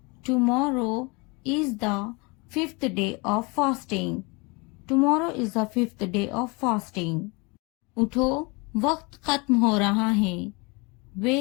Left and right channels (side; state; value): right; quieter; 28.5 dB